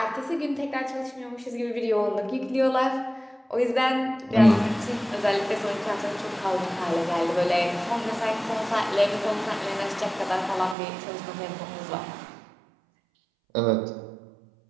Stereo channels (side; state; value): left; drops out; at 10.8 s